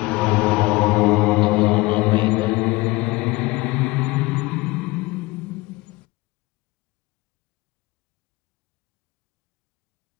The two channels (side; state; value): right; quieter; 21.5 dB